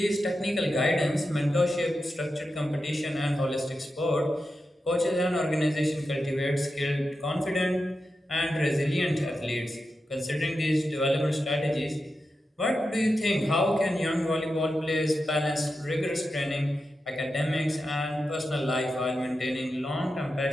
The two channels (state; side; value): normal; both; correlation 0.90